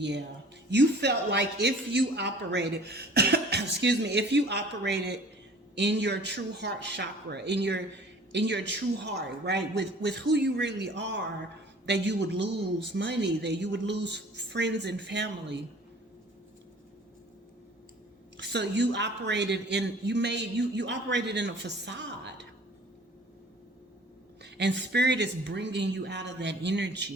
You felt like if you operated, if you operated in your true heart chakra, in your true heart, right? With who you really are, that you would lose money, that you would lose friends and family. So you operated in, you operated in a facade. And spirit is bringing you out of that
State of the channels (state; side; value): normal; both; correlation 0.49